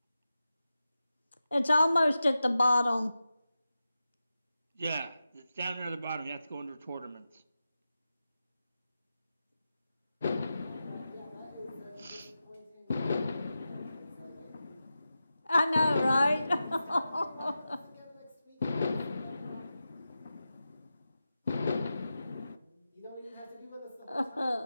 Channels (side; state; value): both; inverted; correlation -0.92